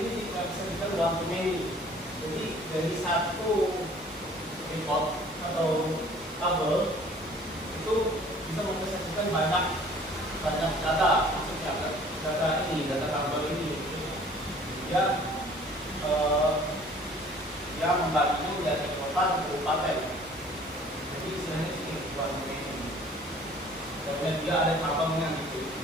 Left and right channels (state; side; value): normal; both; correlation 0.52